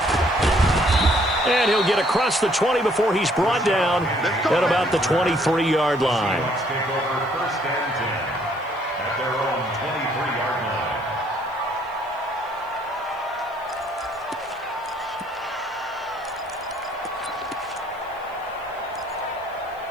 And he'll get across the 20 before he's brought down at about the 23-yard line.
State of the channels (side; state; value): left; noise; hiss, 29 dB below the sound